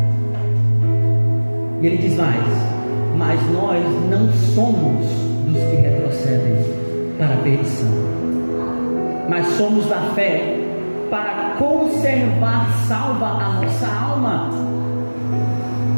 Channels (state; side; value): inverted; both; correlation -1.00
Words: E ele diz mais: mas nós não somos dos que retrocedem para a perdição, mas somos da fé para conservar salva a nossa alma.